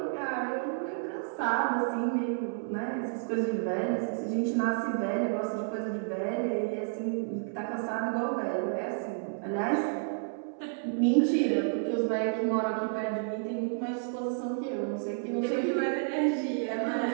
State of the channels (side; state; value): left; silent; 57 dB below the other